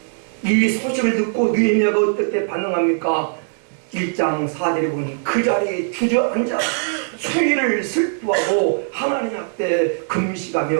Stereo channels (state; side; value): silent; left; digital silence